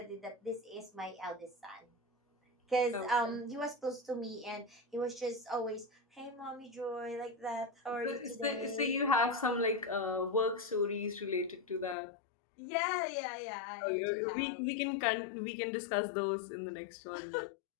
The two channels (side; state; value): right; drops out; at 12.0 s